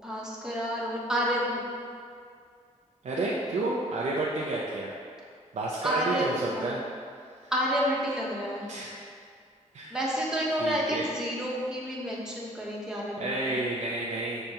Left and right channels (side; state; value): both; normal; correlation 0.51